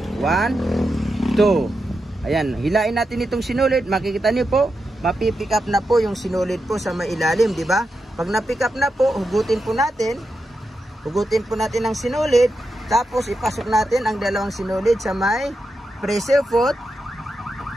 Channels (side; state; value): both; normal; correlation 0.87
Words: 1, 2. Ayan, hilain natin itong sinulid. Makikita niyo po, mapipick up na po yung sinulid po sa may ilalim, di ba? Pag na-pick up na po, hugutin po natin. Hugutin po natin ang sinulid. Tapos ipasok natin ang 2 sinulid sa may pressure foot.